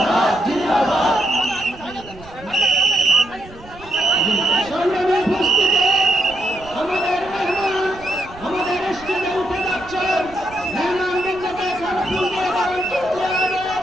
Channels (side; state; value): right; noise; rumble, 19 dB below the sound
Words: সংগ্রামে উপস্থিত আমাদের মেহমান আমাদের স্টেজে উঠে যাচ্ছেন মেহমানবৃন্দকে ফুল দিয়ে বরণ করতে হবে